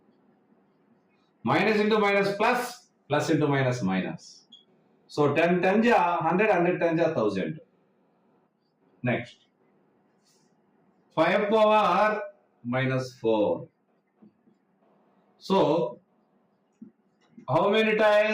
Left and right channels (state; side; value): identical; both; correlation 1.00